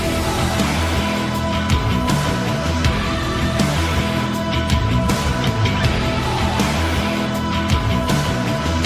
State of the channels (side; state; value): both; identical; correlation 1.00